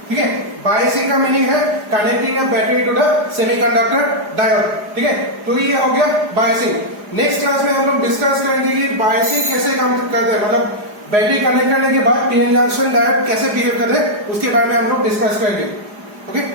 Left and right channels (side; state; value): left; late; 4.9 ms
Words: ठीक है। बायसिंग का मीनिंग है connecting a battery to the semiconductor diode, ठीक है। तो ये हो गया बायसिंग। नेक्स्ट क्लास में हम लोग डिस्कस करेंगे कि बायसिंग कैसे काम करते हैं, मतलब बैटरी कनेक्ट करने के बाद पीएन जंक्शन डायोड कैसे बिहेव करते हैं, उसके बारे में हम लोग डिस्कस करेंगे। Okay,